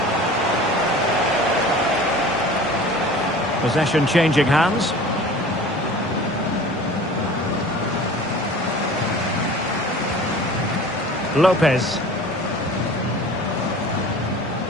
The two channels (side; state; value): both; normal; correlation 0.42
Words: Possession changing hands. Lopez.